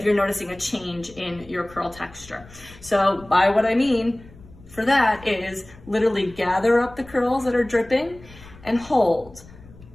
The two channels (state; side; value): noise; left; rumble, 21 dB below the sound